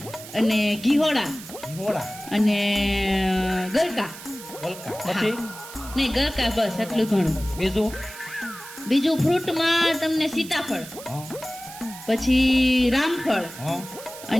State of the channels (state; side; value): noise; right; hiss, 15 dB below the sound